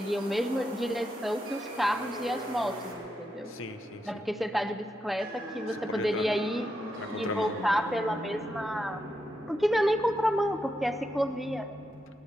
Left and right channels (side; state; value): both; normal; correlation 0.84